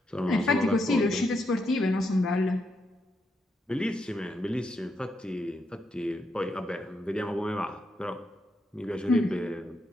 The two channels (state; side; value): normal; both; correlation 0.80